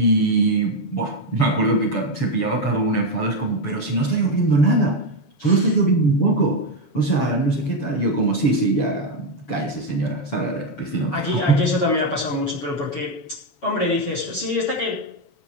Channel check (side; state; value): right; late; 7.1 ms